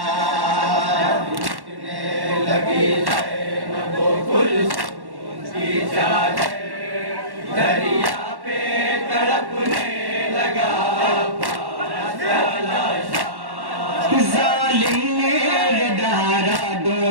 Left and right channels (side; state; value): left; late; 1.1 ms